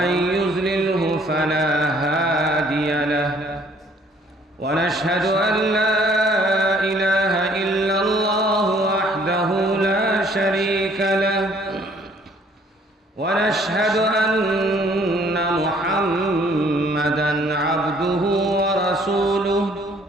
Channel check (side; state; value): both; normal; correlation 0.60